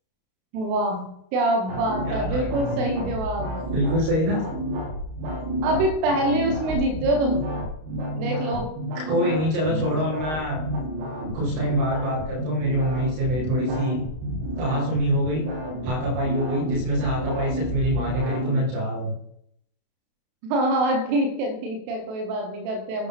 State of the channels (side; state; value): left; late; 32 ms